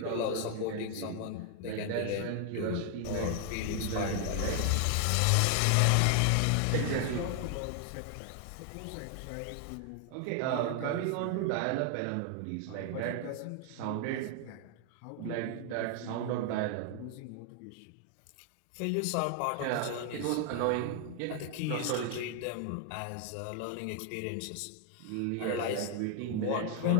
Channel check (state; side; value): different; both; correlation 0.00